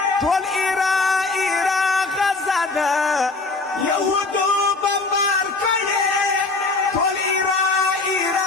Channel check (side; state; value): right; quieter; 3.7 dB